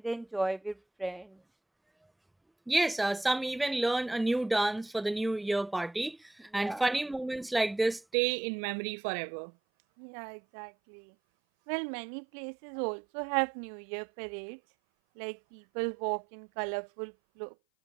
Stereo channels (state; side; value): drops out; left; at 8.1 s